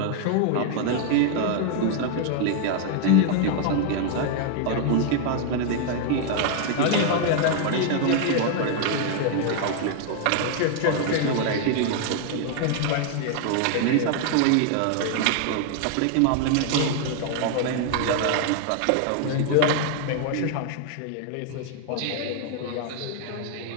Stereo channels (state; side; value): different; both; correlation 0.00